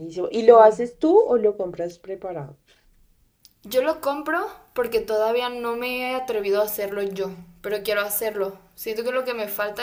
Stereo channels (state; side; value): identical; both; correlation 1.00